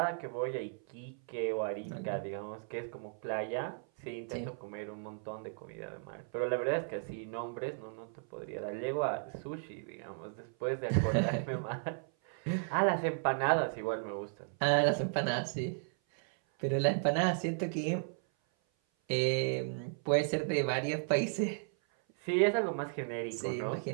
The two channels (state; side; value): silent; left; 54 dB below the other